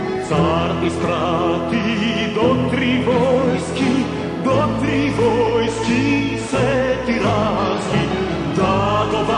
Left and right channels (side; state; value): both; identical; correlation 1.00